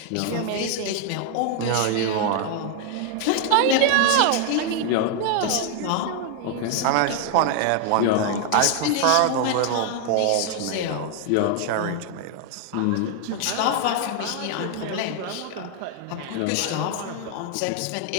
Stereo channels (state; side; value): different; both; correlation 0.00